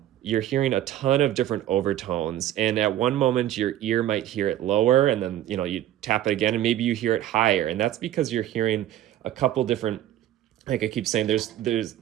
you're hearing a ton of different overtones, and at one moment your ear might hear it lower, and then you tap it again and maybe you hear it higher, and that's because you're hearing a couple different, like I keep saying, there's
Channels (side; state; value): left; quieter; 12.5 dB